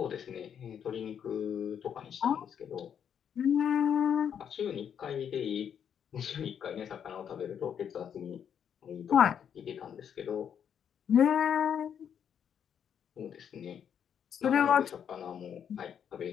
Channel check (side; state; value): right; quieter; 8.4 dB